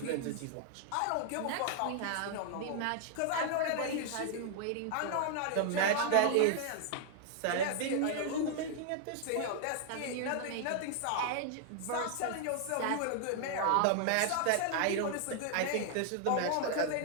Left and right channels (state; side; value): different; both; correlation 0.00